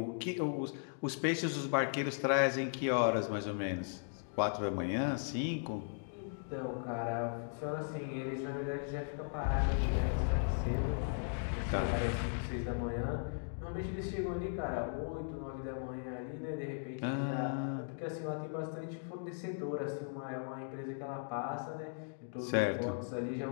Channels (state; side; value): silent; right; digital silence